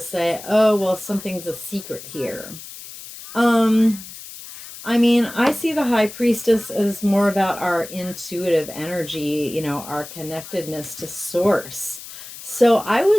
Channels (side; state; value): left; noise; hiss, 14 dB below the sound